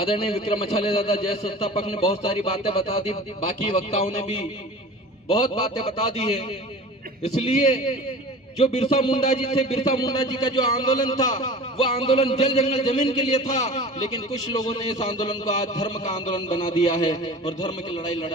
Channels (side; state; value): both; normal; correlation 0.39